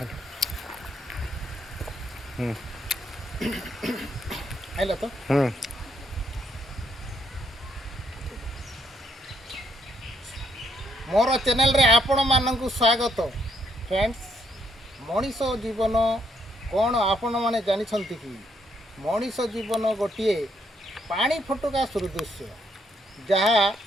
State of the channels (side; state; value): both; normal; correlation 0.73